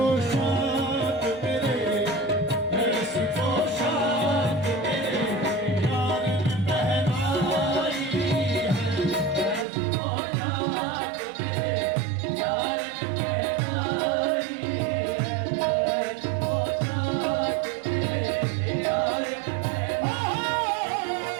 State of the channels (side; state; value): left; drops out; at 9.7 s